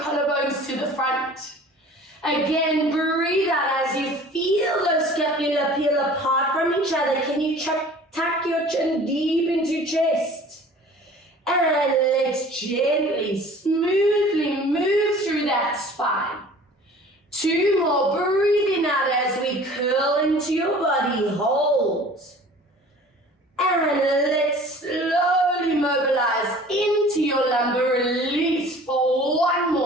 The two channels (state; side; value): normal; both; correlation 0.46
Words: collarbones to the front. Again, breathe out as you feel those scapula peel apart from each other. Can you tuck your chin deep into chest? And let's gently, smoothly move through that spine. 2 more, breathing out as we curl into your body, hold. And let's slowly mobilize into your lumbar release for